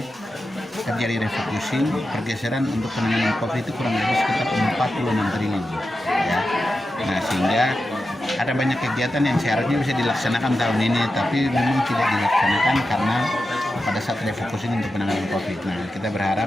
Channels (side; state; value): both; normal; correlation 0.90